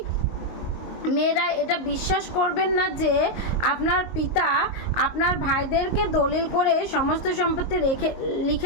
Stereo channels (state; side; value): late; right; 22 ms